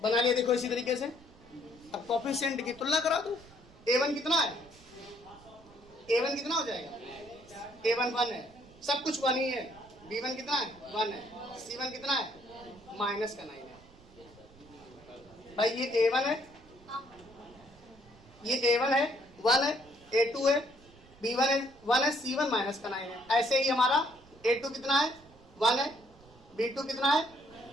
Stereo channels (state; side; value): noise; right; rumble, 25 dB below the sound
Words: बना लिया। देखो इसी तरीके से अब कोफिशिएंट की तुलना करा दो। a1 कितना है, a1 कितना हो जाएगा, a1 1 है, सब कुछ 1 ही है, b1 कितना है 1 है, c1 कितना है माइनस का 9 है। भाई ये a1 है, ये a1 है 1 है, a2 है, b1 है 1 है, c1 माइनस का 9 है। ऐसे ही हमारा a2 कितना है 1 है, b2 कितना है